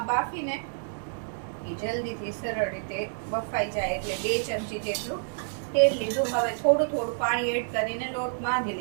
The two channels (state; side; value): silent; left; digital silence